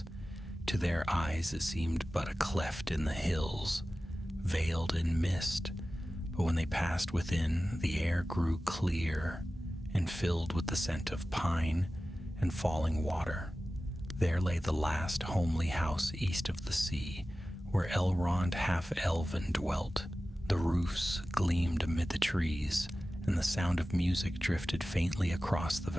To their eyes it seemed but a cleft in the hills, veiled in mist, but when they passed within, the air grew clear and filled with the scent of pine and falling water. There lay the last homely house east of the sea, where Elrond half-elven dwelt. The roofs gleamed amid the trees, and the sound of music drifted faintly across the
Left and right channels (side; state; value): both; normal; correlation 0.95